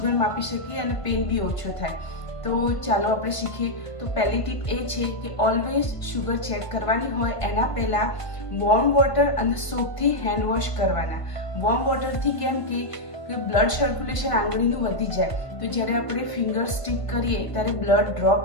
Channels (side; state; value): right; late; 1.5 ms